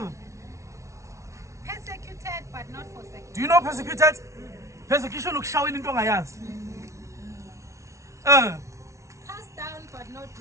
Persecuted but not forsaken. do you know persecuted? Persecution looks showing into my eyes. Cast down but not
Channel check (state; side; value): late; left; 0.14 ms